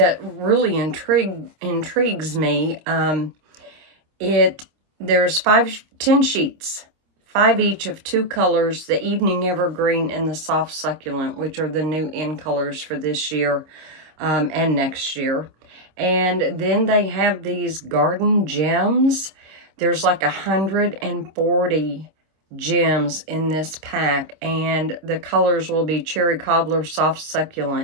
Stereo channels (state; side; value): late; left; 26 ms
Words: really intrigues me. There's 10 sheets, 5 each of 2 colors, the Evening Evergreen and the Soft Succulent, which are the new in colors for this year and next year. And then they have these garden gems. There's like 140 gems in this pack, and the colors will be Cherry Cobbler, Soft